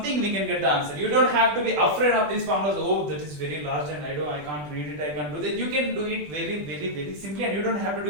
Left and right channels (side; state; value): left; late; 20 ms